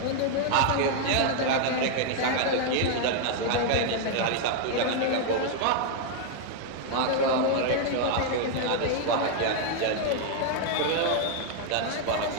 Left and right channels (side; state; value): both; different; correlation 0.00